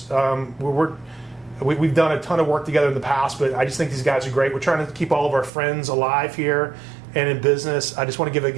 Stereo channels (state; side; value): drops out; left; at 5.5 s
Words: We've done a ton of work together in the past, but I just think these guys are great. We're trying to keep all of our friends alive here and in business. I just want to give a